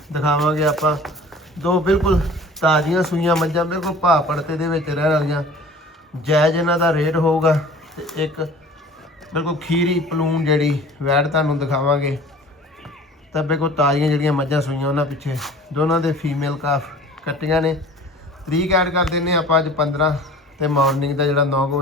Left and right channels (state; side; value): normal; both; correlation 0.44